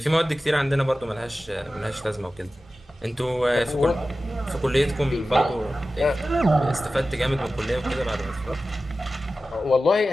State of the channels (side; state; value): both; normal; correlation 0.95